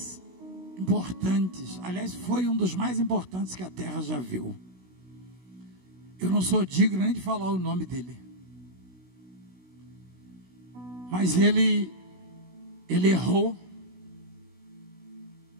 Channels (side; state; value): left; late; 16 ms